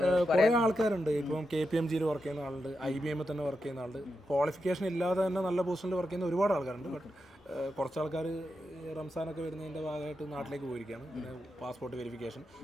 കുറേ ആൾക്കാരുണ്ട്. ഇപ്പം KPMG വർക്ക് ചെയ്യുന്ന ആളുണ്ട്, IBM തന്നെ വർക്ക് ചെയ്യുന്ന ആളുണ്ട്. ക്വാളിഫിക്കേഷൻ ഇല്ലാതെ തന്നെ നല്ല പൊസിഷനിൽ വർക്ക് ചെയ്യുന്ന ഒരുപാട് ആൾക്കാരുണ്ട്. ബട്ട് കുറച്ച് ആൾക്കാർ റംസാനൊക്കെ വരുന്നതിൻ്റെ ഭാഗമായിട്ട് നാട്ടിലേക്ക് പോയിരിക്കുകയാണ്. പിന്നെ പാസ്പോർട്ട് വെരിഫിക്കേഷൻ,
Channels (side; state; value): both; normal; correlation 0.87